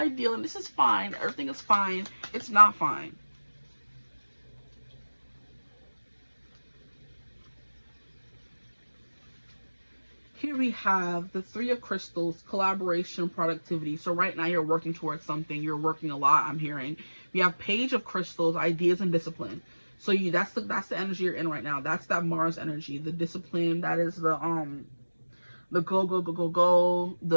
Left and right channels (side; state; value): both; inverted; correlation -1.00